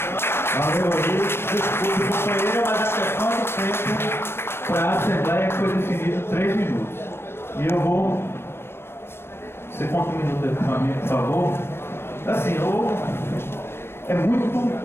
Valeu, desculpe, companheira, mas a questão do tempo para a Assembleia foi definido 3 minutos. E eu vou. Você conta um minuto aí para mim, por favor. Assim, é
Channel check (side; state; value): right; late; 0.12 ms